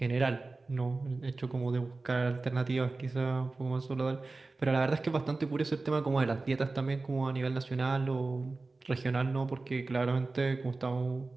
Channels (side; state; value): left; quieter; 3.5 dB